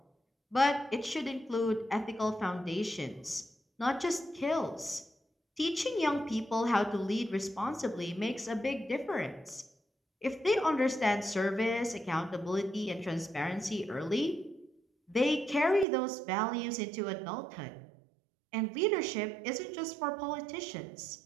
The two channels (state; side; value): drops out; left; at 15.9 s